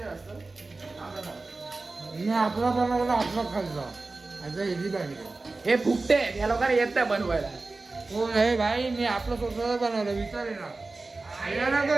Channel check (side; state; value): left; quieter; 3.5 dB